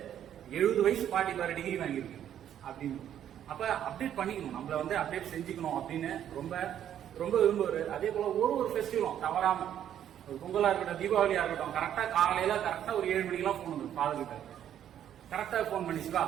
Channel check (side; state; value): left; quieter; 10.3 dB